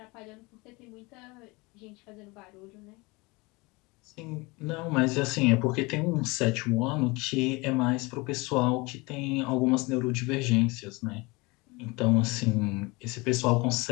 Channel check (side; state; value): right; quieter; 25.1 dB